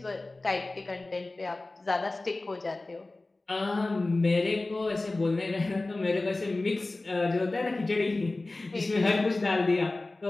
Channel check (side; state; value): right; quieter; 3.1 dB